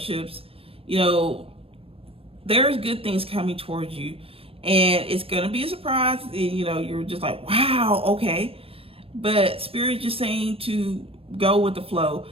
you know, there's good things coming towards you. And it's going to be a surprise. You know, you're just like, wow, okay. But Spirit is just saying to go with the flow.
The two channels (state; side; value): late; left; 0.28 ms